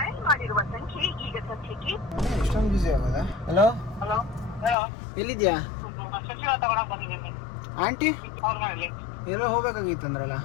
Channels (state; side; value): drops out; right; at 4.8 s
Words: ಎಷ್ಟೊಂದು ಬಿಸಿ ಆಗೋದಾ? ಹಲೋ ಎಲ್ಲಿದ್ಯಾ ಆಂಟಿ? ಎಲ್ಲೋ ಹೋಗ್ಬೇಕಾಗಿತ್ತು ಅಂದ್ರಲ್ಲ.